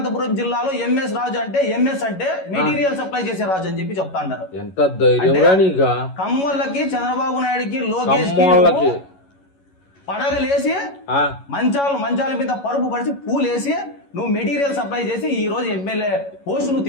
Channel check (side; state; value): right; late; 11 ms